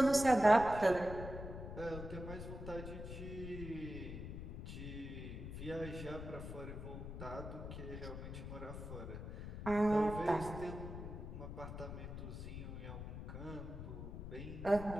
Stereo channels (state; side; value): noise; left; rumble, 8 dB below the sound